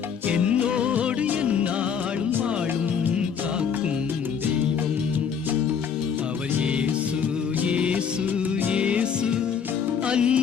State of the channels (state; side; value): quieter; right; 7.1 dB